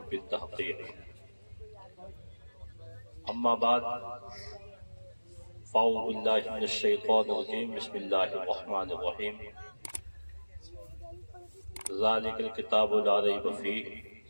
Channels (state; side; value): inverted; both; correlation -1.00